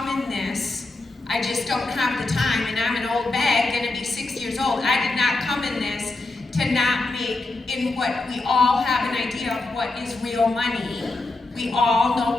in this, I just don't have the time, and I'm an old bag, gonna be 6 years old. I did not come in this to not make, in what we all have an idea of what is real money. We all know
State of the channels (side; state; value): right; quieter; 3.2 dB